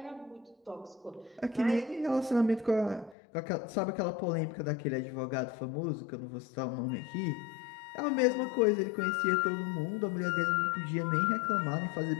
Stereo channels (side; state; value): right; drops out; at 3.2 s